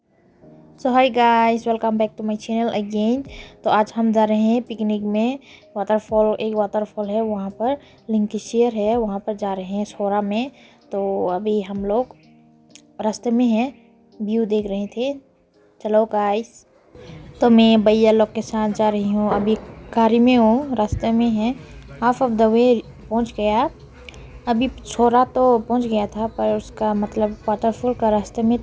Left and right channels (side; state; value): both; identical; correlation 1.00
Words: So hi guys, welcome back to my channel again. तो आज हम जा रहे हैं picnic में waterfall, एक waterfall है वहाँ पर, लिंकिशियर है, वहाँ पर जा रहे हैं सोरा में। तो अभी हम लोग रास्ते में हैं, व्यू देख रहे थे। चलो गाइस, तो मैं भैया लोग के साथ जा रही हूँ, अभी गाड़ी में हूँ, रास्ते में है, हाफ ऑफ द वे पहुँच गया। अभी सोरा तो पहुँच गया था, पर उसका मतलब वाटरफॉल का रास्ते में